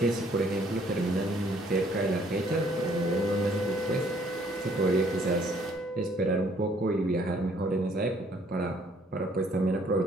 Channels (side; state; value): both; normal; correlation 0.63